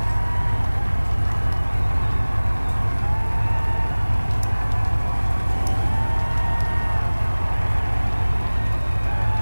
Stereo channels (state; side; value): inverted; both; correlation -1.00